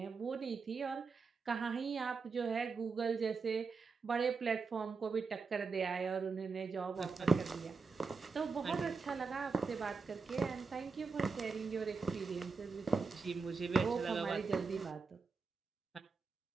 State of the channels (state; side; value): quieter; left; 4.8 dB